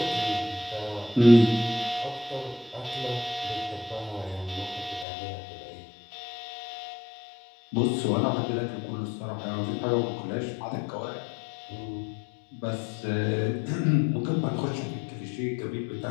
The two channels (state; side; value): drops out; right; at 5.1 s